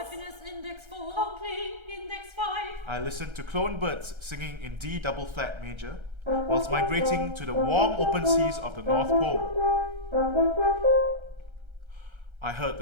index 4, conflict index 5. I listened to clone birds singing in D double flat major whilst migrating to the warm open seas of the North Pole. I heard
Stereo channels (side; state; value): left; late; 1.3 ms